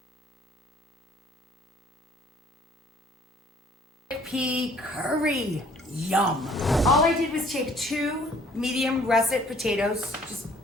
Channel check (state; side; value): normal; both; correlation 0.58